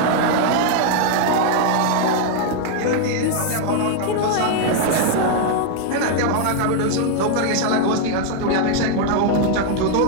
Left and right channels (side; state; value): both; different; correlation 0.00